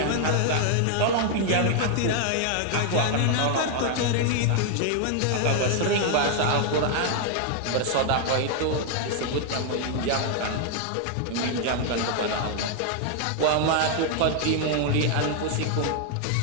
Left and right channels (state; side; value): different; both; correlation 0.00